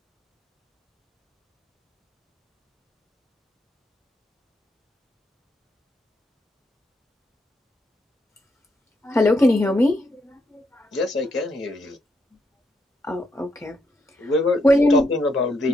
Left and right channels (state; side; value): normal; both; correlation 0.78